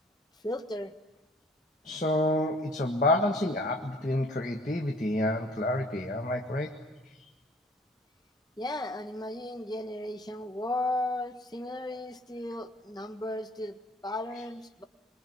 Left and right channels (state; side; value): normal; both; correlation 0.53